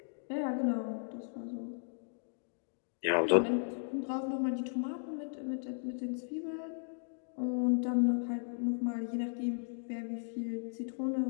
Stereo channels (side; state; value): right; silent; digital silence